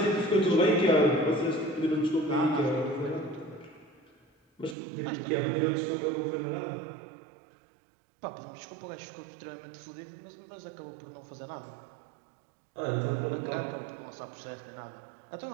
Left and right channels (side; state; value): left; drops out; at 4.8 s